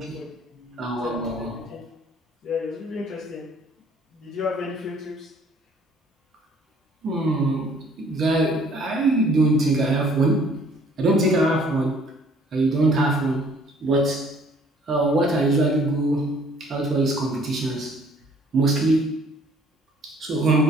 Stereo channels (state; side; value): normal; both; correlation 0.57